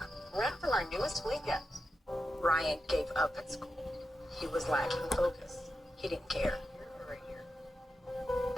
Rent from our newest weekend. Ryan gave up at school. He was lacking focus. He didn't care.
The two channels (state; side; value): normal; both; correlation 0.89